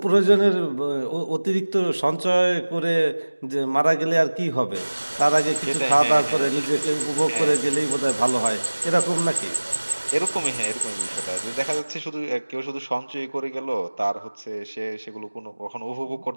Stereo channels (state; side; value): inverted; both; correlation -1.00